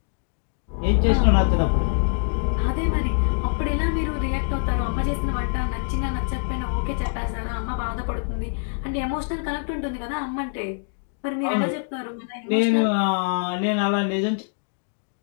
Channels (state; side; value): silent; right; digital silence